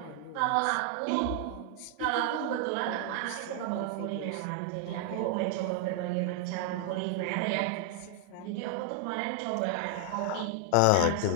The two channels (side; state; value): both; different; correlation 0.00